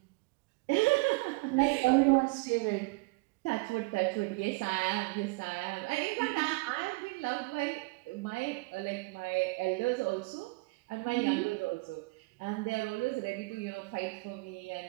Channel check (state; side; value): quieter; left; 26.3 dB